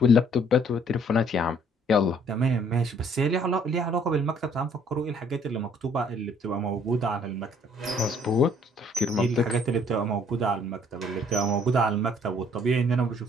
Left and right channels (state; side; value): normal; both; correlation 0.61